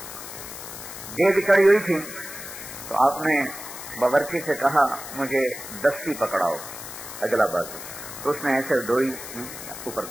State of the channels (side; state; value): left; noise; hiss, 11 dB below the sound